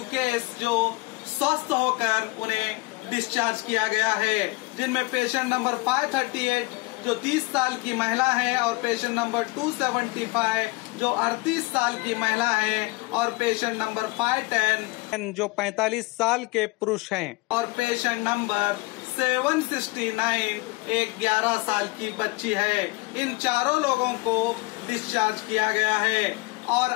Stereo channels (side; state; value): right; quieter; 24.5 dB